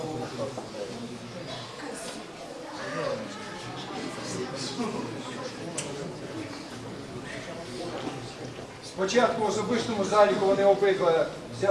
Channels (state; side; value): identical; both; correlation 1.00